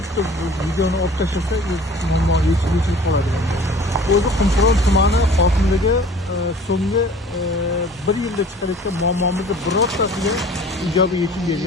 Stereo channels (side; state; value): both; normal; correlation 0.47